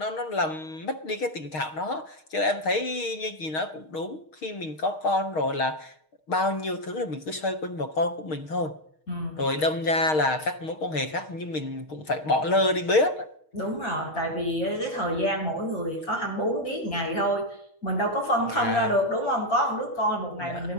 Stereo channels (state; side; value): late; right; 6.5 ms